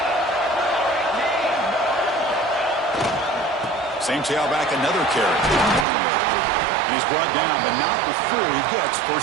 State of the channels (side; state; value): left; drops out; at 5.9 s